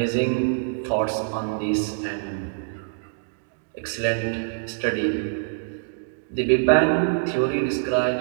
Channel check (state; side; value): silent; left; digital silence